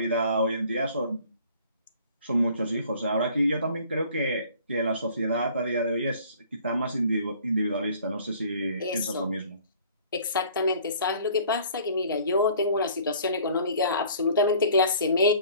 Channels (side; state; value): both; inverted; correlation -0.53